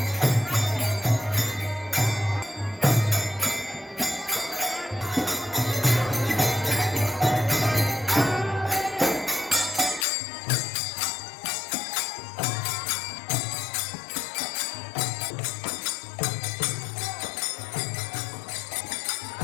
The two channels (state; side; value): drops out; right; at 10.1 s